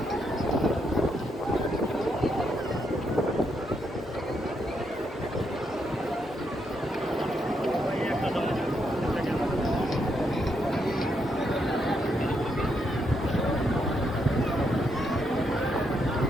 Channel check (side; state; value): both; normal; correlation 0.78